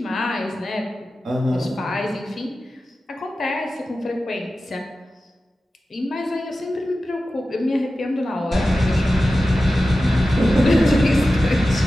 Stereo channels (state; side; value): normal; both; correlation 0.94